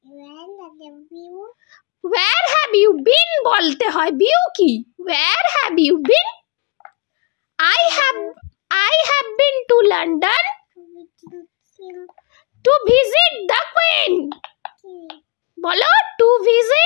where have you been বলতে হয়, বিউ কি, where have you been? I have been to London to visit the Queen, বলো to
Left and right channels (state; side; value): quieter; right; 30.4 dB